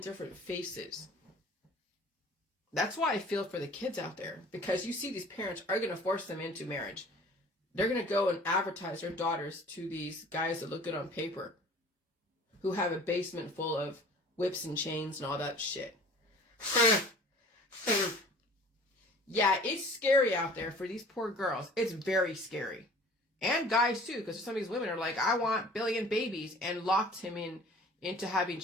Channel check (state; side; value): normal; both; correlation 0.47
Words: faces. That's why I feel for the kids out there, because you see these parents are going to force them into marriage. They're going to go and advertise their daughters to these guys that look good on paper, who have a basement full of whips and chains and all that shit. Yeah, it's scary out there for these poor girls. It's very scary. And guys too, because some of these women are like, I want billion babies, and locked him into having